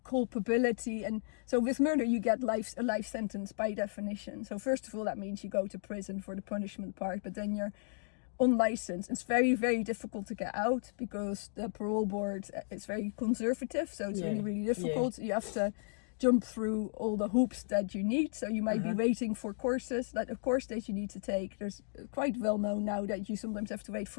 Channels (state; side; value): silent; right; digital silence